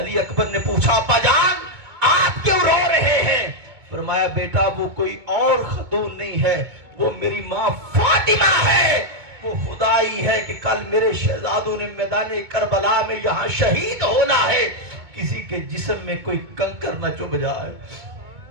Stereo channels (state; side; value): late; left; 2.2 ms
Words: اکبر نے پوچھا ابا جان آپ کیوں رو رہے ہیں؟ فرمایا بیٹا وہ کوئی اور خاتون نہیں ہے، وہ میری ماں فاطمہ ہے، وہ خدائی ہے کہ کل میرے شہزادوں نے میدان کربلا میں یہاں شہید ہونا ہے، کسی کے جسم میں کوئی کنکر نہ چبھ جائے۔